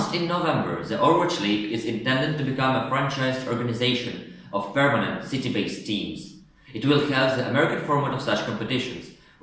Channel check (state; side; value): identical; both; correlation 1.00